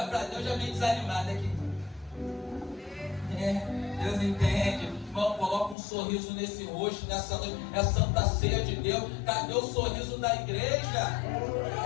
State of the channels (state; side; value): drops out; right; at 5.8 s